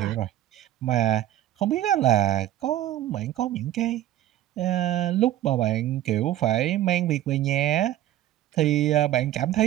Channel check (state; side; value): quieter; left; 13.1 dB